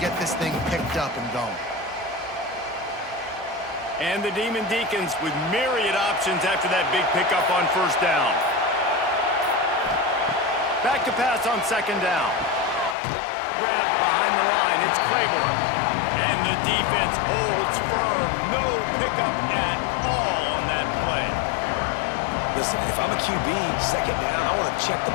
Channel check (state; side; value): drops out; right; at 13.0 s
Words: get this thing picked up and going. And the Demon Deacons with myriad options after that big pickup on 1st down. Back to pass on 2nd down. Grabbed behind the line, it's Claiborne. And the defense holds firm. No pickup at all on that play. Listen, if I'm a QB, 2nd down, I want to check the